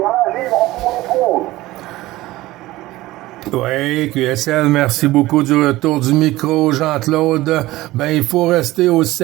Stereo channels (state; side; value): quieter; left; 17.8 dB